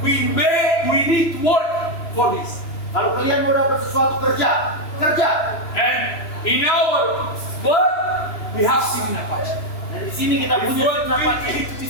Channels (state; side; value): late; right; 3.0 ms